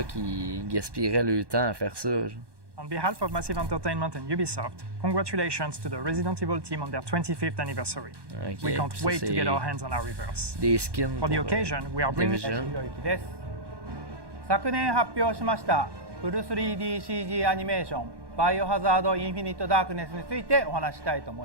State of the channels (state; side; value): late; left; 1.1 ms